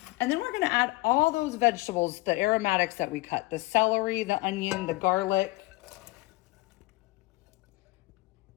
And then we're gonna add all those vegetables, the aromatics that we cut, the celery, the onion, the garlic.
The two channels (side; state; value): right; quieter; 21.4 dB